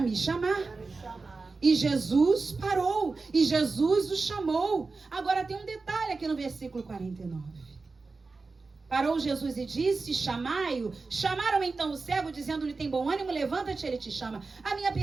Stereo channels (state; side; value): quieter; left; 4.0 dB